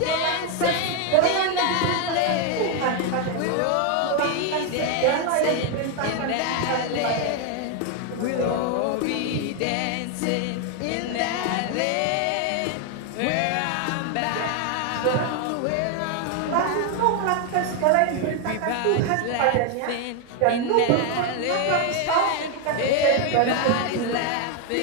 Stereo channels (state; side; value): different; both; correlation 0.01